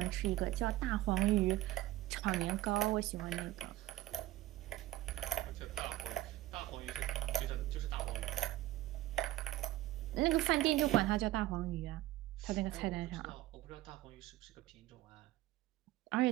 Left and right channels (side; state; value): left; quieter; 16.1 dB